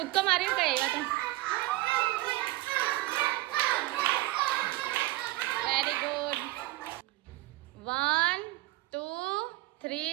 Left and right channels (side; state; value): left; quieter; 18.9 dB